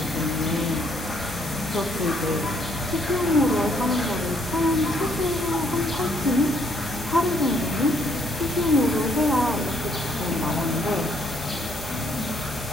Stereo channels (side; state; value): both; normal; correlation 0.68